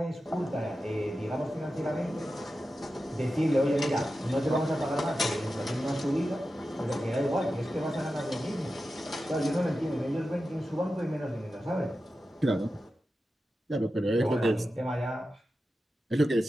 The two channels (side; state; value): both; normal; correlation 0.92